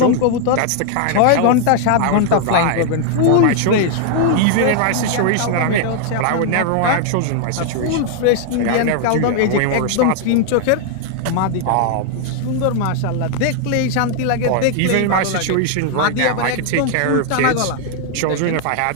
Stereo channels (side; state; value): both; different; correlation 0.00